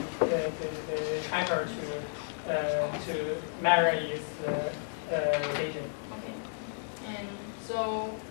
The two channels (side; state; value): right; silent; digital silence